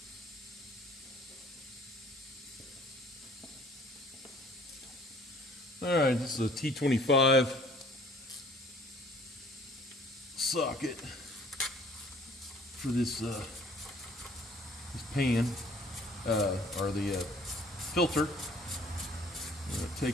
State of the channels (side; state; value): both; normal; correlation 0.55